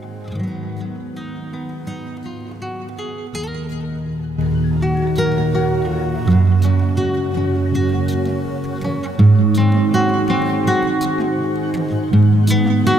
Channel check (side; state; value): both; normal; correlation 0.77